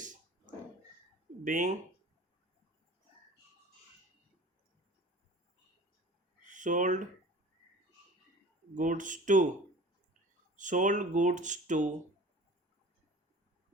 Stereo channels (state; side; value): normal; both; correlation 0.42